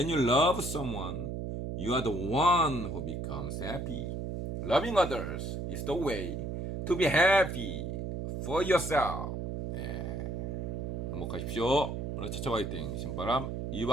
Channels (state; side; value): noise; right; hum, 4 dB below the sound